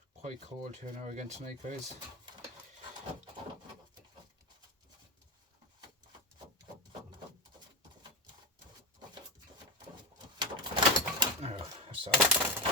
Quite cold here now again tonight, guys.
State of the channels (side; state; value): both; normal; correlation 0.15